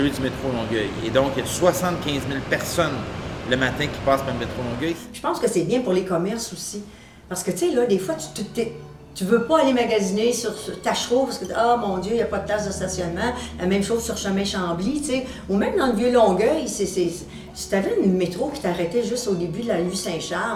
du métro Longueuil. Et donc, il y a 75 000 personnes le matin qui passent par le métro Longueuil. Je pense que c'est bien pour les commerces aussi. Parce que, tu sais, là, des fois, tu veux pas aller magasiner sur Tachereau parce que, ah mon Dieu, il n'y a pas de place de stationnement. La même chose sur Chemin Chambly, tu sais. Ou même dans le vieux Longueuil, si tu avais une métro qui t'arrêtait juste au début de la rue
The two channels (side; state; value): both; identical; correlation 1.00